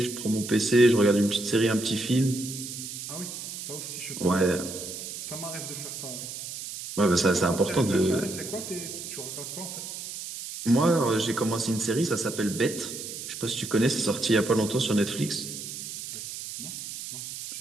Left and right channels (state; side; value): noise; right; hiss, 9 dB below the sound